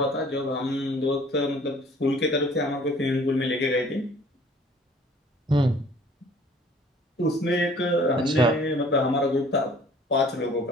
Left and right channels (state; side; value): normal; both; correlation 0.53